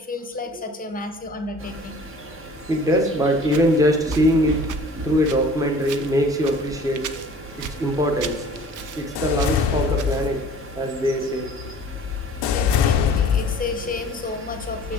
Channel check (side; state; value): both; normal; correlation 0.48